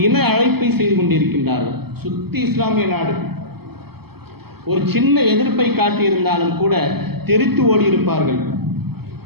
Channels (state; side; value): late; left; 0.96 ms